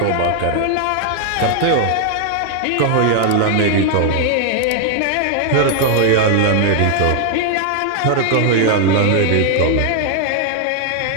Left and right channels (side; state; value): both; different; correlation 0.00